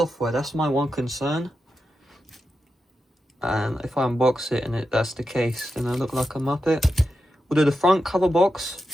That's my one concern. And if I unbox it and that's the case, then I look like a muppet. Although the front cover box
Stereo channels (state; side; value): normal; both; correlation 0.89